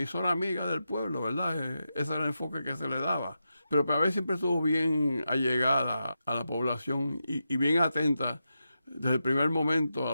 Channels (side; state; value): both; inverted; correlation -0.88